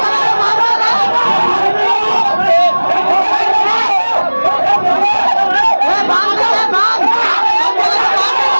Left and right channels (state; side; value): inverted; both; correlation -1.00